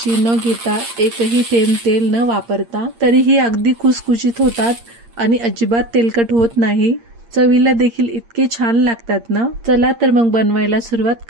न घेता एकही थेंब तेल न वापरता तरीही अगदी खुसखुशीत होतात आणि अजिबात तेलकट होत नाही। चवीला देखील इतके छान लागतात ना। चला तर मग बनवायला सुरुवात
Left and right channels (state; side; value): late; left; 8.7 ms